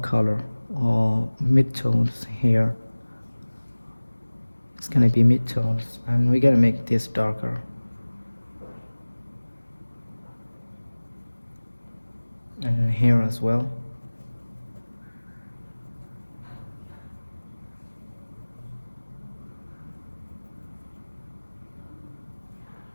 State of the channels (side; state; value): both; inverted; correlation -1.00